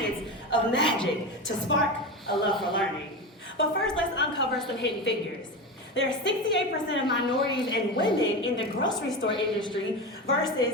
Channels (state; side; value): normal; both; correlation 0.22